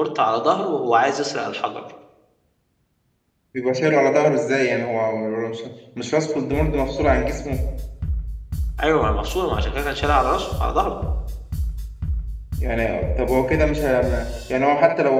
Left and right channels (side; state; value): both; identical; correlation 1.00